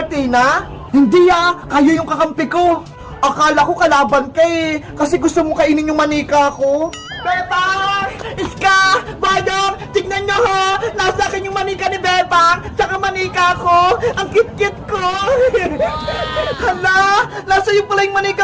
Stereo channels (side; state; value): both; identical; correlation 1.00